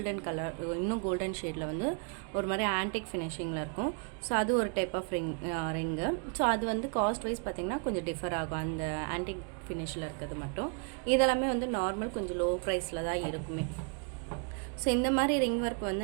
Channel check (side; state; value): left; quieter; 38.3 dB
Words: கலர், இன்னும் கோல்டன் ஷேடில் வந்து ஒரு மாதிரி ஆன்டிக் ஃபினிஷிங்கில் இருக்கும். ஸோ அது ஒரு டைப் ஆஃப் ரிங்கு. ஸோ அது வந்து காஸ்ட் வைஸ் பார்த்திங்கன்னா கொஞ்சம் டிஃபர் ஆகும், அந்த ஆன்டிக் ஃபினிஷில் இருக்கிறது மட்டும். இதெல்லாமே வந்து நார்மல் கொஞ்சம் லோ ப்ரைஸில் தான் இருக்குமே. ஸோ இந்த மாதிரி ரிங் ஒர்க்